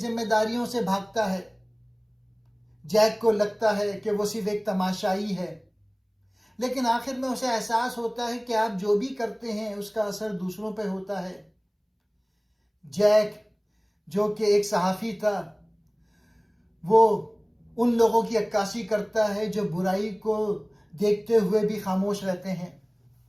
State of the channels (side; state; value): both; identical; correlation 1.00